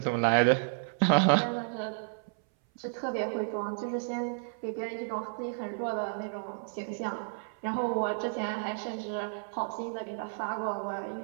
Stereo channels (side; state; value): left; silent; 57 dB below the other